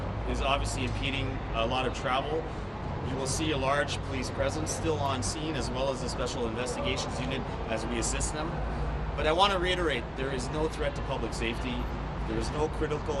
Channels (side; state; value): both; identical; correlation 1.00